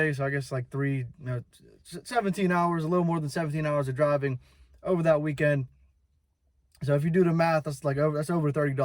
so I guess like 17 hours, a little more than 17 hours of driving over that weekend. So if you do the math, that's over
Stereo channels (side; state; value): both; identical; correlation 1.00